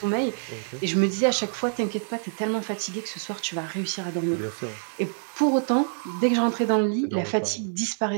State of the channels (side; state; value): left; silent; 57 dB below the other